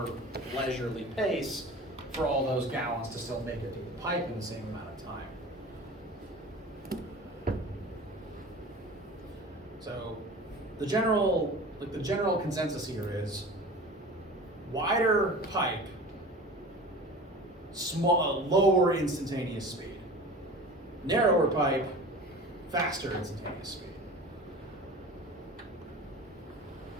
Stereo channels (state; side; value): normal; both; correlation 0.38